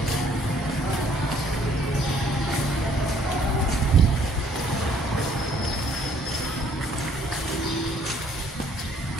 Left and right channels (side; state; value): both; normal; correlation 0.62